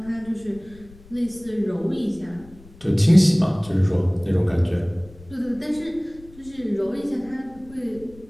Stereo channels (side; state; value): left; noise; rumble, 22 dB below the sound